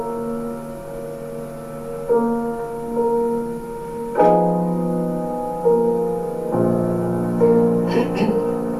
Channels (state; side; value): identical; both; correlation 1.00